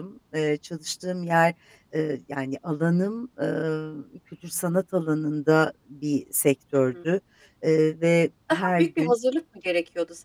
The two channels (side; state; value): both; identical; correlation 1.00